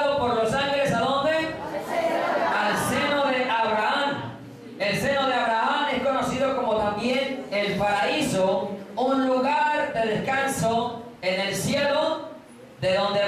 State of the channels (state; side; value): identical; both; correlation 1.00